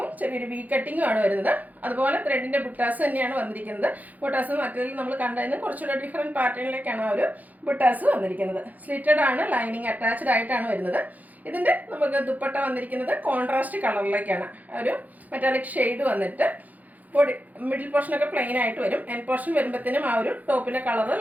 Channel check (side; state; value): left; late; 0.080 ms